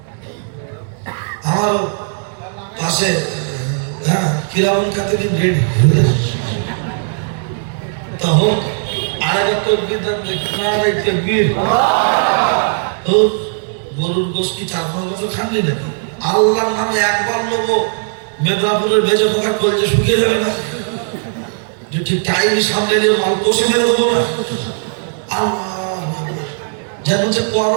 আমার পাশে হ্যাঁ কিরামুল কাতিবিন রেডি তা হোক। আরেকবার তকবীর দেন, নারে তাকবীর। ও গরুর গোশত কি 4-5 বছর খাননি নাকি? আল্লাহর নামে একবার নেবো, মেদিনীপুরের ভেজে পোকা কলজে শুকিয়ে যাবে না? যে ঠিক টাইম সামনে নিয়ে মাল কষে মেরে দেবো না? আল্লাহ যেন যে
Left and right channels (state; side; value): silent; left; digital silence